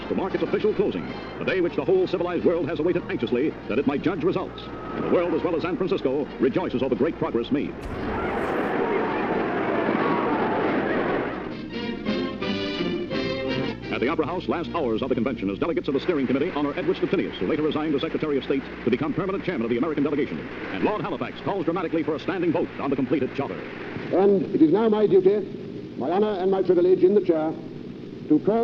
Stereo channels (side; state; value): both; identical; correlation 1.00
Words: to mark its official closing, the day which the whole civilized world has awaited anxiously that it might judge results. And the world, as well as San Francisco, rejoices over great progress made. At the Opera House, last hours of the convention, as delegates of the steering committee honor Edward Stettinius, who later resigned as Secretary of State to become permanent chairman of the American delegation. And Lord Halifax calls dramatically for a standing vote on the completed charter. And it is now my duty, my honor and my privilege in the chair, to